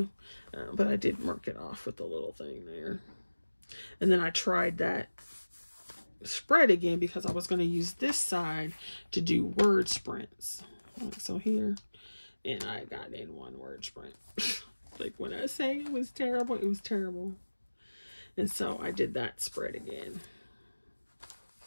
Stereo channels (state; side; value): inverted; both; correlation -1.00